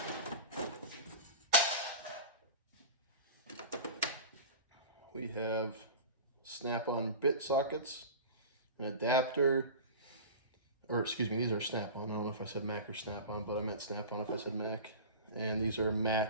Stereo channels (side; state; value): both; inverted; correlation -0.33